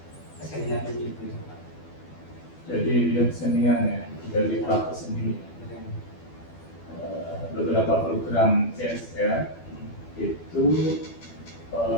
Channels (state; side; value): late; right; 12 ms